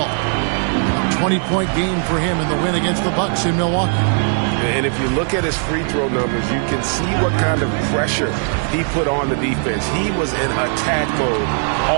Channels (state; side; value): silent; left; 56 dB below the other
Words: A 20-point game for him in the win against the Bucks in Milwaukee. And if you look at his free throw numbers, you can see what kind of pressure he put on the defense. He was in attack mode